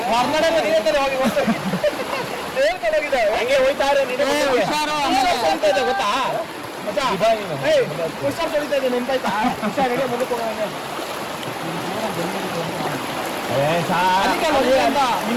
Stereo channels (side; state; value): both; identical; correlation 1.00